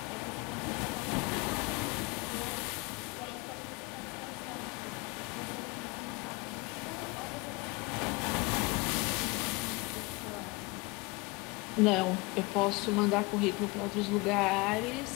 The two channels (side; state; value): right; quieter; 25.8 dB